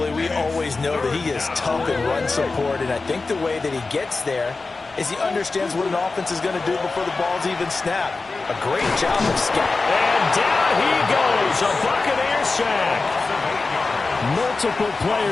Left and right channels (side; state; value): right; quieter; 3.8 dB